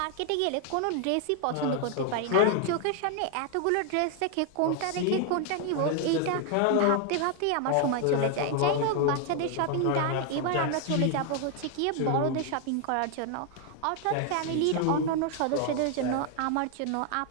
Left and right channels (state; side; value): different; both; correlation 0.00